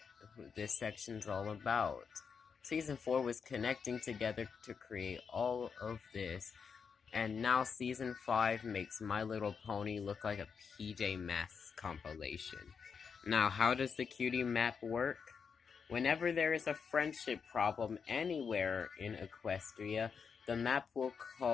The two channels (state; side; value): quieter; right; 6.1 dB